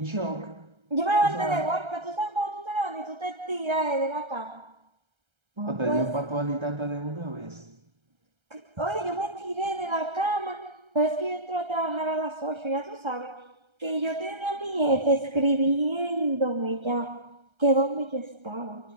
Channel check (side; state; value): left; late; 1.3 ms